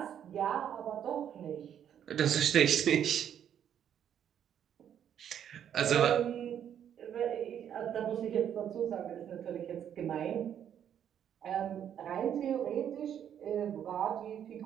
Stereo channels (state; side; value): quieter; left; 9.4 dB